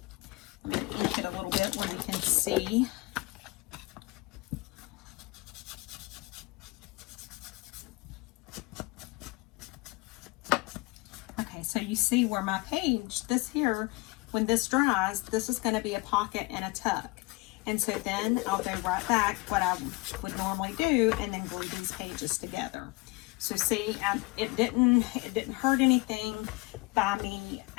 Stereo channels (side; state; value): right; quieter; 24.4 dB